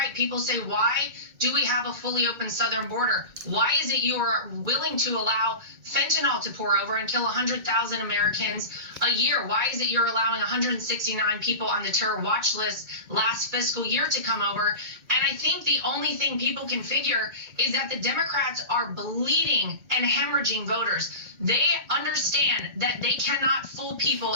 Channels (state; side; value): late; left; 2.3 ms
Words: People say, why do we have a fully open southern border? Why is it you are willing to allow fentanyl to pour over and kill 100,000 Americans a year? Why is it you're allowing 169 people on the terror watch list last fiscal year to come over? And I think the only thing people can figure is that the Democrats are bleeding and hemorrhaging voters. They understand that they cannot fool people